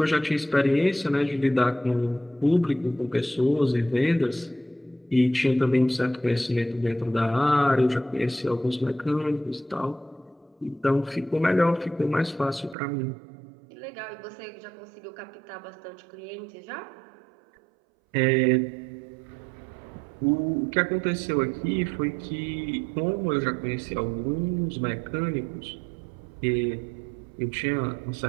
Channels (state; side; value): drops out; left; at 12.8 s